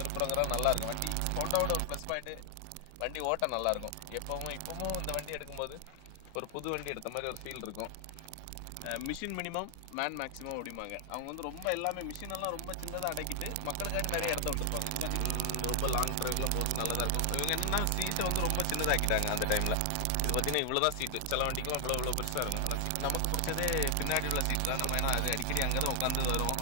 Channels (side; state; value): both; different; correlation 0.00